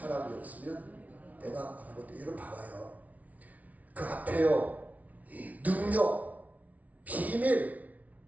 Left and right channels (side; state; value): left; late; 0.071 ms